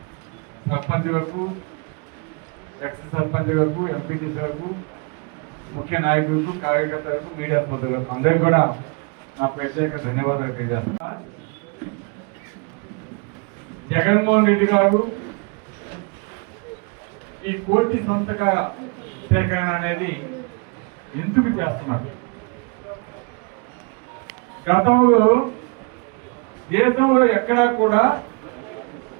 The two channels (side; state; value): left; quieter; 33.7 dB